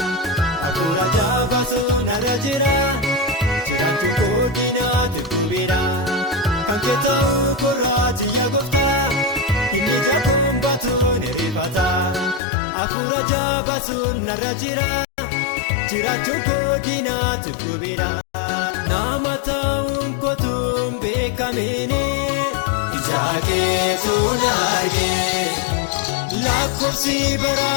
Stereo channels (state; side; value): drops out; right; at 12.4 s